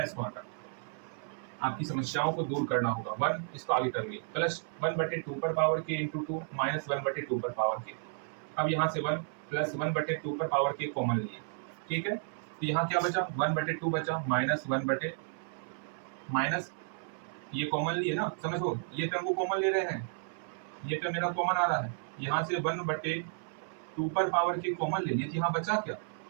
इसको हटा। आपकी समस्याओं को दूर करना होगा। 1 इसको आगे कर लिए, प्लस 1/2 पर पावर के इंटू 2 माइनस 1/2 पर पावर के। अब यहाँ से 1 प्लस 1/2 पर पावर के कॉमन लिए। ठीक है, तो यहाँ क्या बचा, 1/2 बचा, माइनस 1 माइनस ये कॉमन लिए ना, समझो ये टर्म को कॉमन ले रहे हैं, ये टर्म मेरा कॉमन आ रहा है। यहाँ से 1/2 पर पावर के कॉमन ले लिए, तो यहाँ बचा क्या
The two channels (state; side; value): silent; left; 56 dB below the other